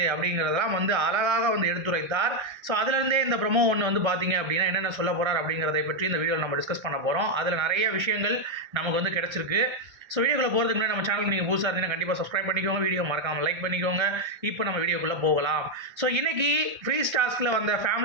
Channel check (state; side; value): late; left; 1.3 ms